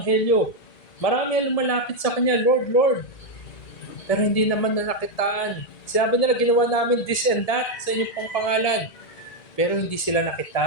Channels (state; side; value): late; right; 2.1 ms